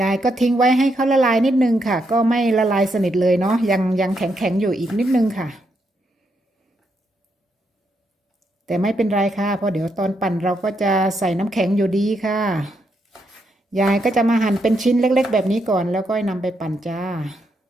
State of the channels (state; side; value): normal; both; correlation 0.79